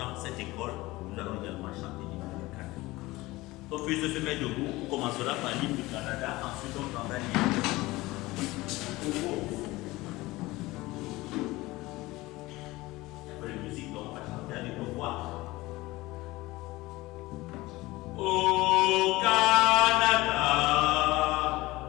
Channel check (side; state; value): right; quieter; 19.9 dB